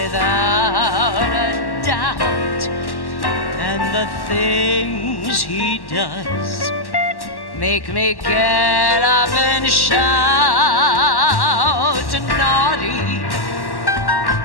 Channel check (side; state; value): right; late; 1.1 ms